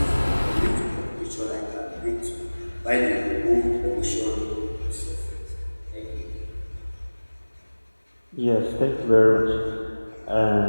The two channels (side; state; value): both; inverted; correlation -1.00